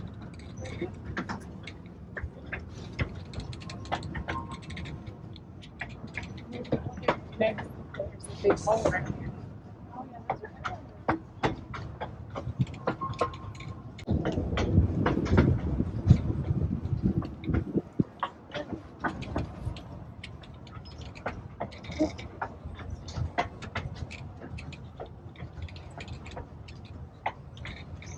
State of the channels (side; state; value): both; identical; correlation 1.00